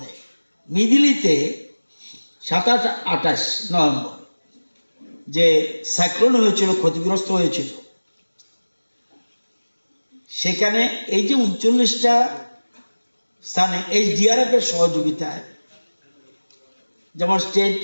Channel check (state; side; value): inverted; both; correlation -1.00